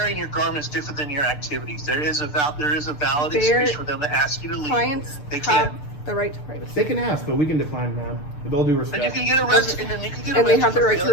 your garments different than your activities. There is a valid Their excuse for them to ask you to leave. clients They have can't. the right to privacy. They can ask, but we can decline, ma'am. With all due And you respect. can get arrested. And then you can get And they arrested have the for right to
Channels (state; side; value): late; right; 6.8 ms